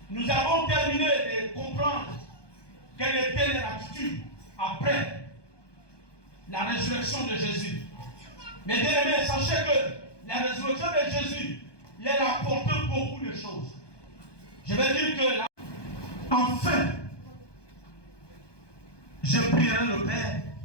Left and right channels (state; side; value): late; right; 1.2 ms